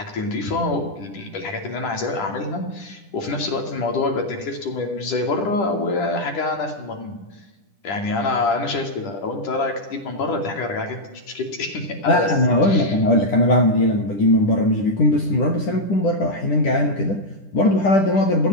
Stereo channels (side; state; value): right; late; 10 ms